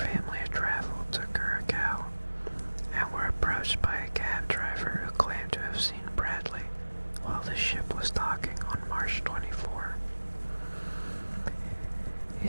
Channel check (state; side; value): inverted; both; correlation -1.00